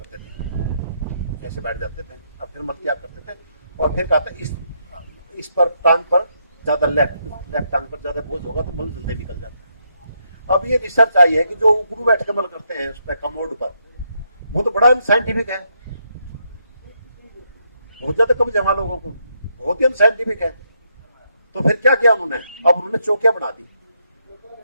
थे, ऐसे बैठ जाते थे और फिर मल त्याग करते थे। और फिर कहते इस पर टांग पर ज्यादा लेफ्ट टांग पर ज्यादा बोझ होगा तो मल जल्दी निकल जाता है। अब ये रिसर्च आई है कि जो उकड़ू बैठ के मल करते हैं उस पर कमोड पर, वो तो बड़ा साइंटिफिक है, बहुत ज्यादा कम जमा लोगों को, बहुत ही अनसाइंटिफिक है। तो फिर क्या किया उन्होंने, अब उन्होंने चौकियां बना दी,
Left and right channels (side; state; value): both; inverted; correlation -0.77